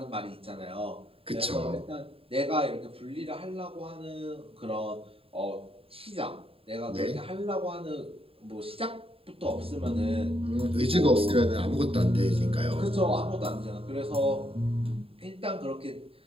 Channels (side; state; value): left; late; 0.27 ms